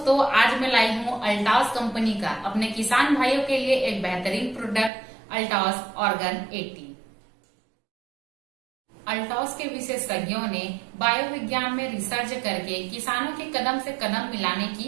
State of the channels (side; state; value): left; drops out; at 4.9 s